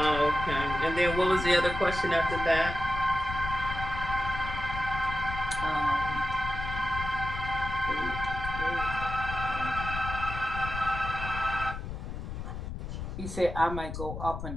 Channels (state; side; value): noise; left; rumble, 6 dB below the sound